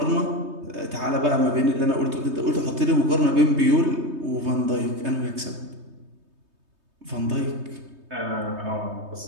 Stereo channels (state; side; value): late; left; 3.2 ms